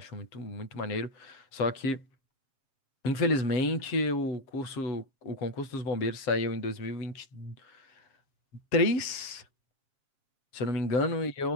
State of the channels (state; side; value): late; right; 7.4 ms